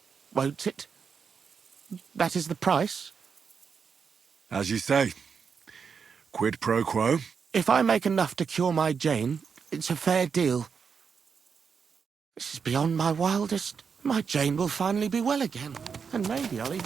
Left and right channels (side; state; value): left; quieter; 6.1 dB